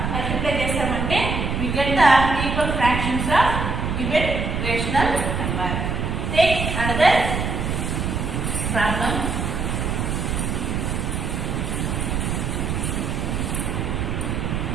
మల్టిప్లై చేస్తామంటే we get the equal fractions of given rational number. Take another problem.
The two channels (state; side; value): noise; right; rumble, 1 dB below the sound